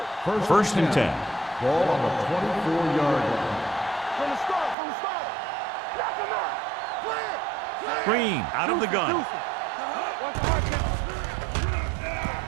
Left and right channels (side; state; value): left; drops out; at 4.8 s